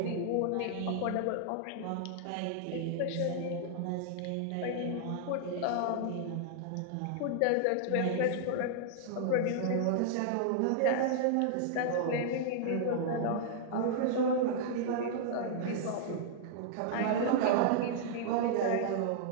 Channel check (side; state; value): both; different; correlation -0.01